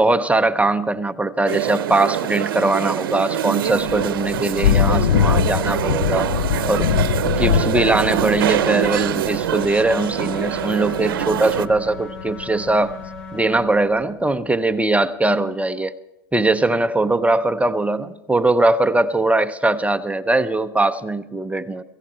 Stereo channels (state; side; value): normal; both; correlation 0.52